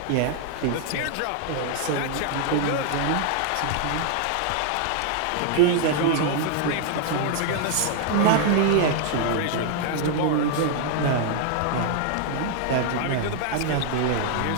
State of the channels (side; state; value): both; different; correlation 0.00